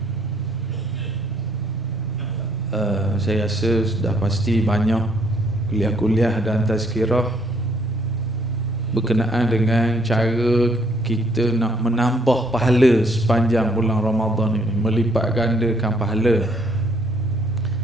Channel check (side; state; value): both; normal; correlation 0.66